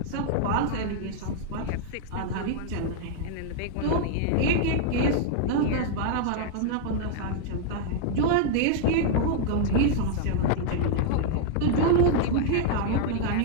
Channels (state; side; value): different; both; correlation -0.01